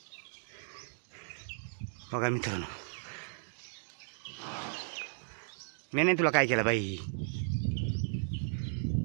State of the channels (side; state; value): left; silent; digital silence